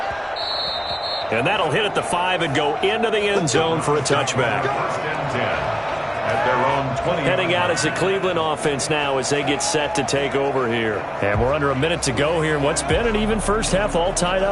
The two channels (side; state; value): both; identical; correlation 1.00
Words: And that'll hit at the 5 and go into the end zone for a touchback. Heading out as the Cleveland offense now as they get set to take over here. And we're under a minute to go here in what's been an even first half, all tied